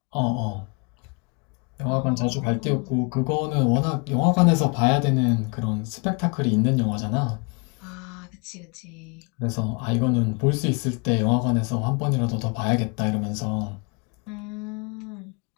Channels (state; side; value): quieter; right; 32.3 dB